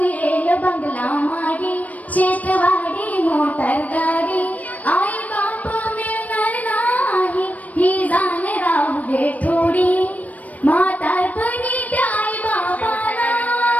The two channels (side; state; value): right; late; 0.072 ms